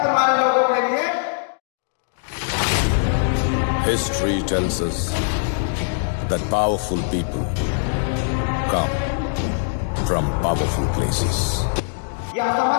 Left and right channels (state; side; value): silent; right; digital silence